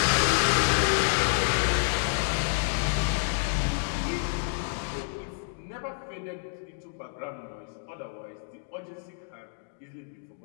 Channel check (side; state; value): right; silent; digital silence